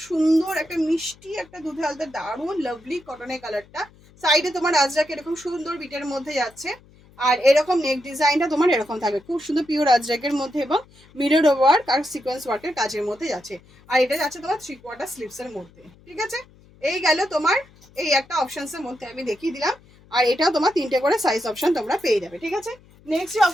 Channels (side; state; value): left; noise; hum, 27 dB below the sound